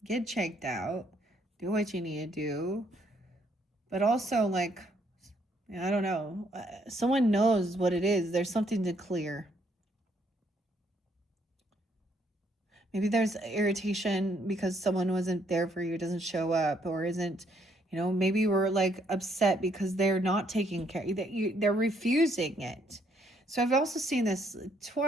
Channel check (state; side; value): normal; both; correlation 0.69